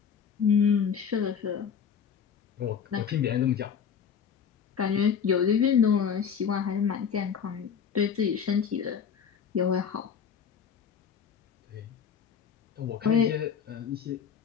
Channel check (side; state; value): right; quieter; 7.3 dB